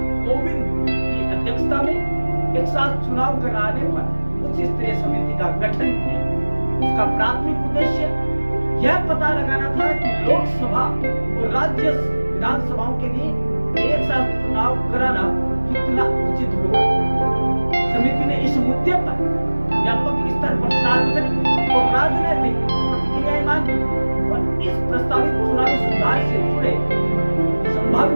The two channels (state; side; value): inverted; both; correlation -1.00